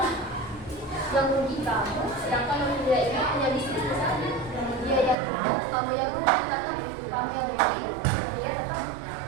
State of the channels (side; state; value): left; drops out; at 5.2 s